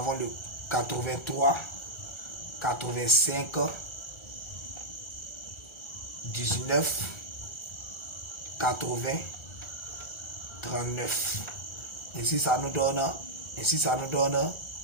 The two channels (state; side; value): late; right; 1.4 ms